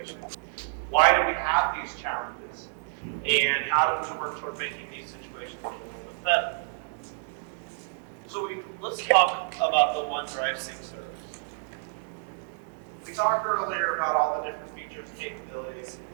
Why do we have these challenges? And how do we work toward making these situations a little bit better? So let's talk about the OneDrive sync service. We talked earlier about all the different features and capabilities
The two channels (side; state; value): left; silent; 59 dB below the other